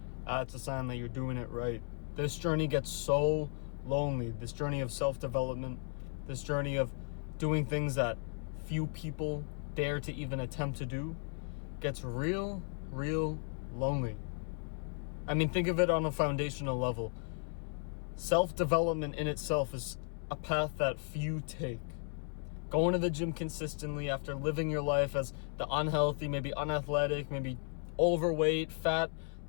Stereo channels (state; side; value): silent; right; 54 dB below the other